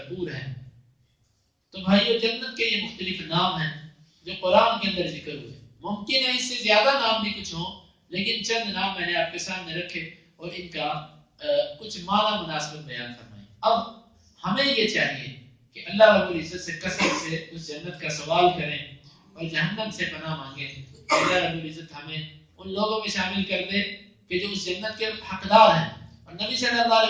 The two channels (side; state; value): both; identical; correlation 1.00